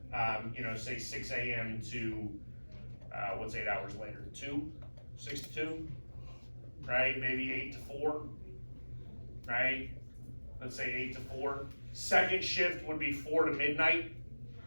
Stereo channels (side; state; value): both; inverted; correlation -1.00